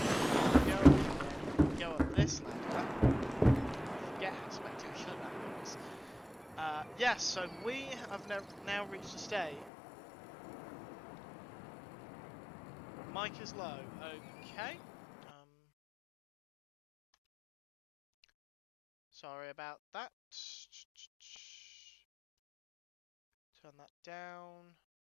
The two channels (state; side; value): drops out; right; at 9.7 s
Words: Go up this ladder. I forget how spectacular that looks. Yes, so we have now reached a state. Mic is low. Okay. Sorry about that. Turn that down.